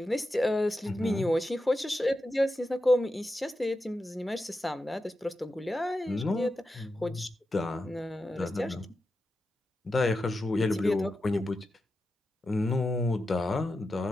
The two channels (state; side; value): normal; both; correlation 0.90